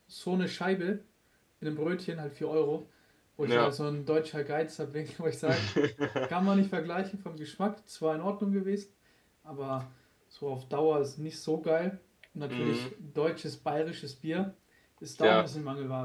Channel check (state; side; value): identical; both; correlation 1.00